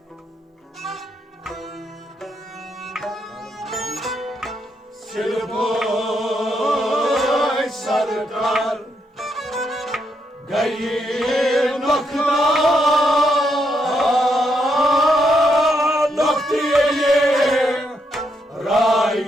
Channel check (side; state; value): both; normal; correlation 0.79